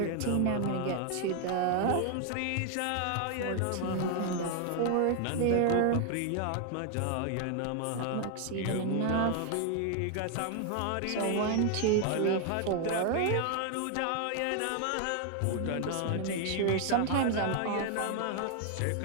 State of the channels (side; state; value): both; different; correlation 0.00